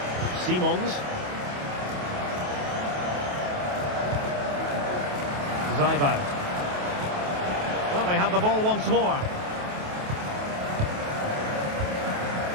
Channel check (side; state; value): left; late; 28 ms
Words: Simons. Seiwald. Well, they have the ball once more.